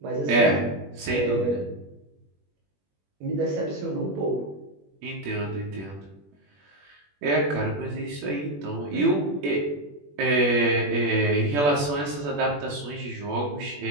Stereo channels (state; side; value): late; left; 21 ms